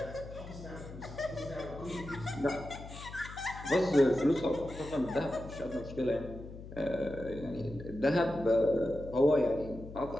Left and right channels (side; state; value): left; noise; hum, 13 dB below the sound